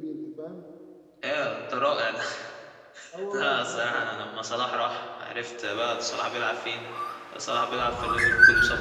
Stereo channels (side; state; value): both; identical; correlation 1.00